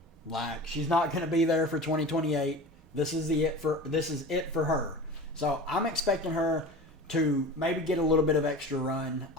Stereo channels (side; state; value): both; normal; correlation 0.35